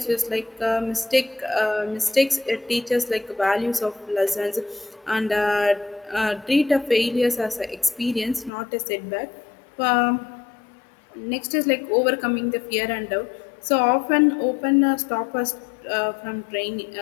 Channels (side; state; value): right; drops out; at 8.5 s